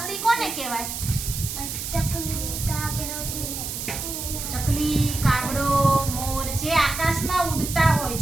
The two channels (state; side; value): noise; right; hiss, 5 dB below the sound